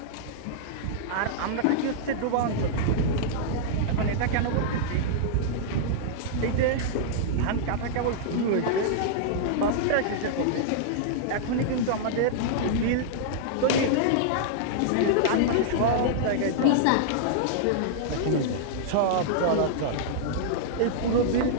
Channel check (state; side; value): different; both; correlation -0.02